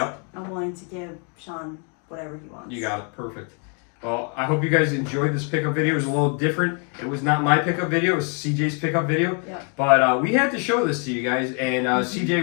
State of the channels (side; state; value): right; quieter; 39.2 dB